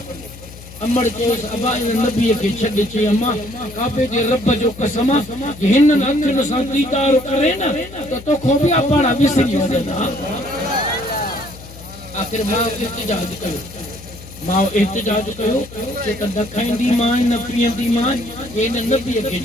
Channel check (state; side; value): noise; left; hum, 17 dB below the sound